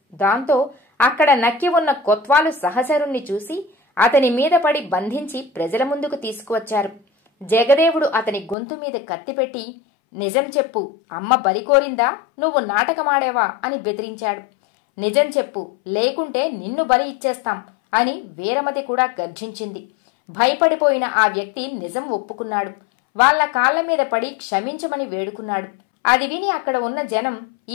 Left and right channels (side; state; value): right; drops out; at 8.6 s